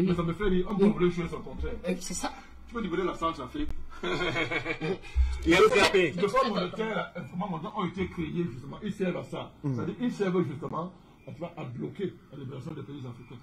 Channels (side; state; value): both; identical; correlation 1.00